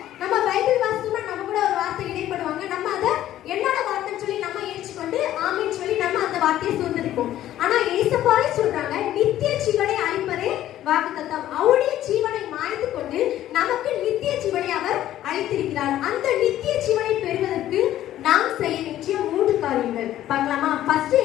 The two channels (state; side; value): quieter; right; 12.9 dB